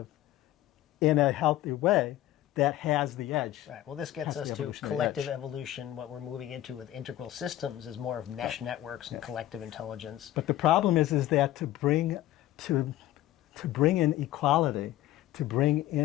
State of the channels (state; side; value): quieter; right; 14.2 dB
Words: in a healthy way that has the edge. Right. Well, this gets us to collective evolution. What we're moving into with integral systems is more of mesh networks and collective intelligence. But the problem is that to bring in equality, to bring